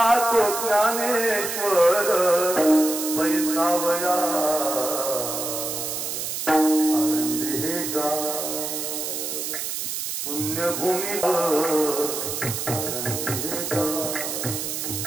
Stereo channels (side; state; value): right; noise; hiss, 4 dB below the sound